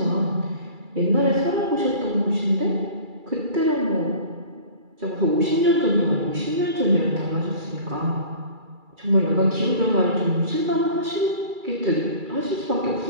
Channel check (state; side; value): late; left; 2.3 ms